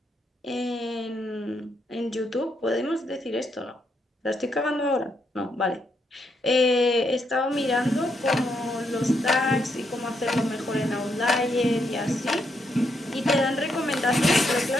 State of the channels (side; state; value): both; normal; correlation 0.78